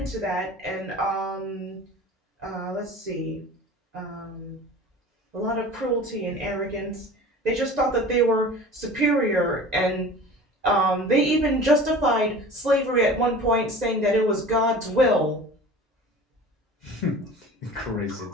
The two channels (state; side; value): normal; both; correlation 0.40